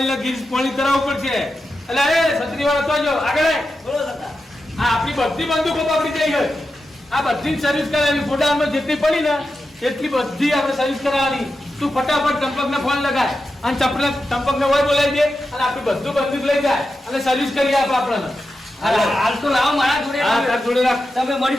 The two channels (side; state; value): both; normal; correlation 0.90